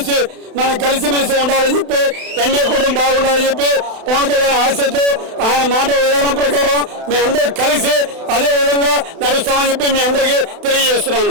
మనం కలిసిమెలిసి ఉండాలని చెప్పి, ఎన్డీఏ కూడా బాగుండాలని చెప్పి పవన్ కళ్యాణ్ ఆశతో ఆయన మాట విధానం ప్రకారం మేమందరూ కలిసి అదే విధంగా నడుస్తామని చెప్పి మీ అందరికీ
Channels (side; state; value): left; late; 32 ms